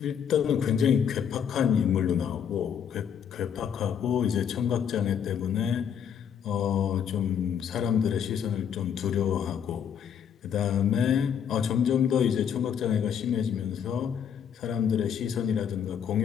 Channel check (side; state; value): right; quieter; 8.2 dB